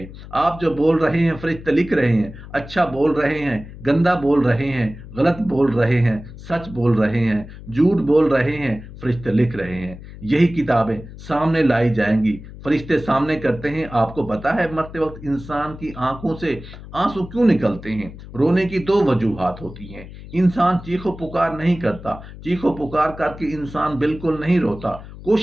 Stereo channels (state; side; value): noise; left; hum, 15 dB below the sound